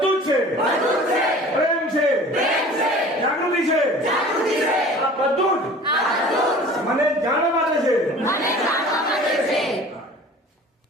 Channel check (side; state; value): both; normal; correlation 0.44